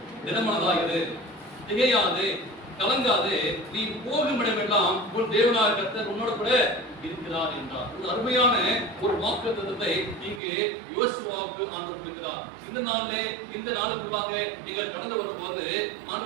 திடமனதாகிறது, திகையாது, கலங்காது, நீ போகும் இடமெல்லாம் உன் தேவனாகிய கர்த்தர் உன்னோட கூட இருக்கிறார் என்றார். ஒரு அருமையான ஒரு வாக்குத்தத்தத்தை இங்கே யோசுவாவுக்கு ஆண்டவர் கொடுக்கிறார். இந்த நாளிலே இந்த நாளுக்குள்ளாக நீங்கள் கடந்து வரும்போது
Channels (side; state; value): left; drops out; at 10.4 s